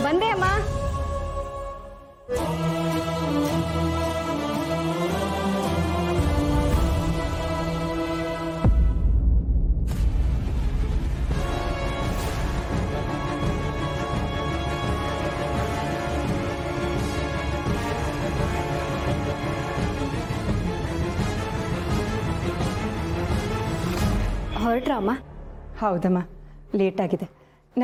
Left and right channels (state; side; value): identical; both; correlation 1.00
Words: ಬಂದೆ ಅಮ್ಮ. ಹೊರಟ್ರಾ ಅಮ್ಮ? ಹೌದಮ್ಮ, ಲೇಟಾಗಿದೆ.